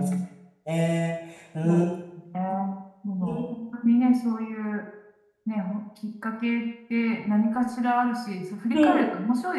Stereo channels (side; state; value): both; identical; correlation 1.00